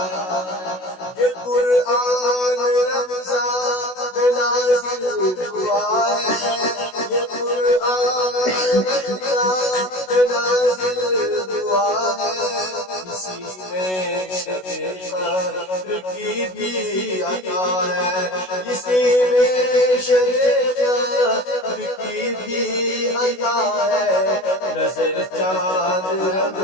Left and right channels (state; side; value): late; right; 16 ms